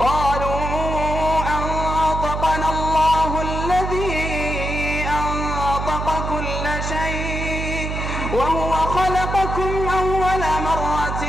أنطقنا الله الذي أنطق كل شيء وهو خلقكم أول مرة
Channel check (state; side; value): noise; right; hum, 3 dB below the sound